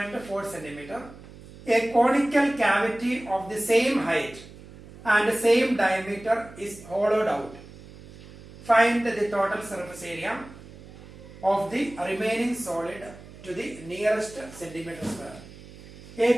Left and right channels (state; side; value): noise; right; hum, 18 dB below the sound